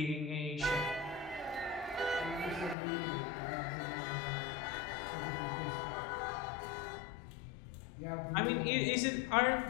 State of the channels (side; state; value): right; drops out; at 2.8 s